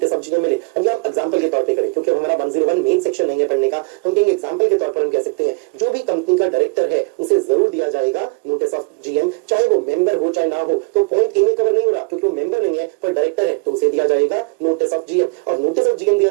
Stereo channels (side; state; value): left; quieter; 31.7 dB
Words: ऑफ जीएम मिले। अब हम एग्जांपल के तौर पे करें, क्योंकि हमारा 101 मेन सेक्शन नहीं है पढ़ने का, हम कहेंगे एग्जांपल के तौर पर हम कह सकते हैं जो भी कंपनी का डायरेक्टर है उसे जरूर दिया जाएगा नोटिस ऑफ जीएम, चाहे वो मेंबर हो चाहे ना हो। तो पॉइंट ए में कवर नहीं हो रहा क्योंकि वो मेंबर नहीं है पर डायरेक्टर है तो उसे दिया जाएगा नोटिस ऑफ जीएम। और नोटिस ऑफ जीएम दिया